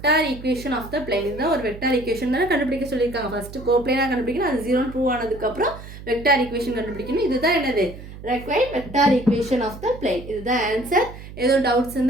equation of the plane. இதுதான் ஒரு வெக்டார் ஈக்குவேஷன் தானே கண்டுபிடிக்க சொல்லியிருக்காங்க. ஃபர்ஸ்ட் கோப்ளேனாக கண்டுபிடிக்கணும், அது 0 ப்ரூவ் ஆனதுக்கப்புறம் வெக்டார் ஈக்குவேஷன் கண்டுபிடிக்கணும். இதுதான் என்னது required vector equation of the plane. இதுதான் ஆன்சர். ஏதோ டவுட்ஸ்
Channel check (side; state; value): right; noise; hum, 14 dB below the sound